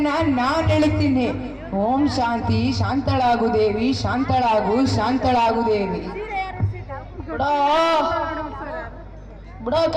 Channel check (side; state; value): both; identical; correlation 1.00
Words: ನಾನ್ ಹೇಳ್ತೀನಿ. ಓಂ ಶಾಂತಿ, ಶಾಂತಳಾಗು ದೇವಿ, ಶಾಂತಳಾಗು ದೇವಿ. ಬಿಡೋ ಬಿಡೋ